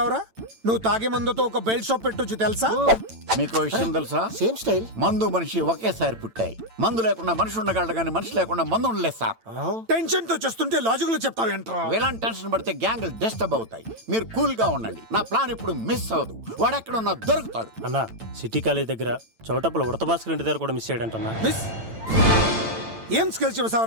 నువ్వు తాగే మందుతో ఒక బెల్ట్ షాప్ పెట్టొచ్చు తెలుసా? మీకు విషయం తెలుసా? Same style. మందు మనిషి ఒకేసారి పుట్టాయి. మందు లేకుండా మనిషి ఉండగలడు కానీ మనిషి లేకుండా మందు ఉండలేదు సార్. టెన్షన్ తో చేస్తుంటే లాజిక్ లో చెప్తావేంట్రా? ఎలాంటి టెన్షన్ పడితే గ్యాంగులు డిస్టర్బ్ అవుతాయి. మీరు కూల్ గా ఉండండి. నా ప్లాన్ ఇప్పుడు మిస్ అవ్వదు. వాడెక్కడున్నా దొరుకుతాడు. అన్నా, సిటీ కాలేజ్ దగ్గర చౌటప్పుల ఉడత భాస్కర్ ఇంటి దగ్గర కూడా మిస్ అయ్యాడంటన్నా. మిస్ ఏం స్కిల్స్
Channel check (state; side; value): late; left; 8.9 ms